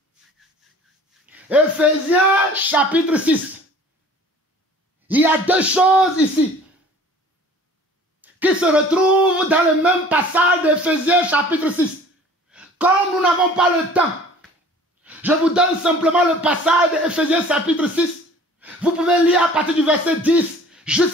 Éphésiens chapitre 6. Il y a deux choses ici qui se retrouvent dans le même passage d'Éphésiens chapitre 6. Comme nous n'avons pas le temps, je vous donne simplement le passage d'Éphésiens chapitre 6. Vous pouvez lire à partir du verset 10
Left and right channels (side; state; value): both; normal; correlation 0.48